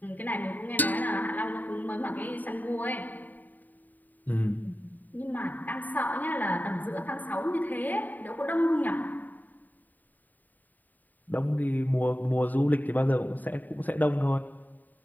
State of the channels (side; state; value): right; late; 0.085 ms